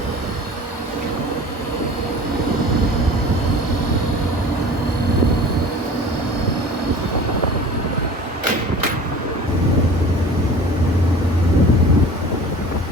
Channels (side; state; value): both; normal; correlation 0.41